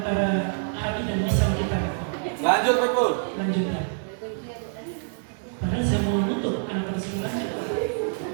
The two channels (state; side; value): silent; left; 56 dB below the other